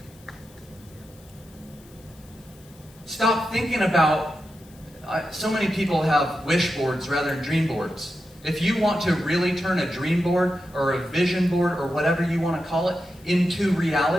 Stop thinking about, so many people have wish boards rather than dream boards. If you want to really turn a dream board or a vision board or whatever you want to call it into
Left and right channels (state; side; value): noise; left; hiss, 26 dB below the sound